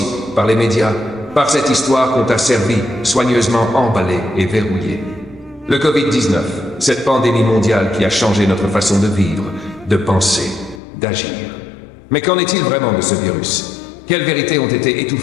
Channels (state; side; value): drops out; right; at 10.8 s